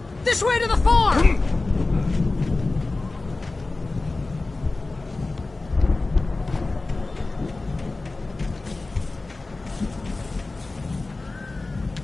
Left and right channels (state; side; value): quieter; right; 3.3 dB